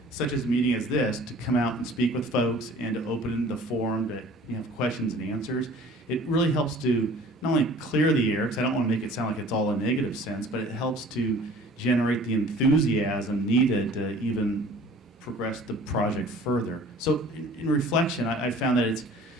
such as a meeting as this, to come out and speak with folks and to open the forum to have questions and answers, it really helps to not only clear the air, because I don't want to make it sound like it's all a negative sense, but it helps to generate the enthusiasm needed to even progress the project further. So in reflection, I found that it's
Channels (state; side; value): normal; both; correlation 0.48